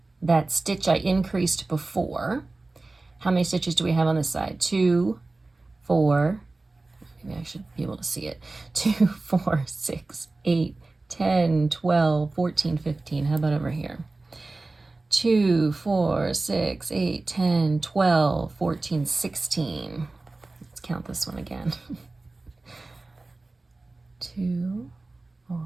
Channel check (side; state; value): left; quieter; 3.3 dB